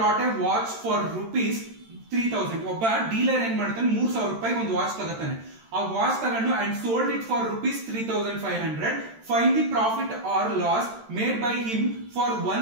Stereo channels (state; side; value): late; left; 13 ms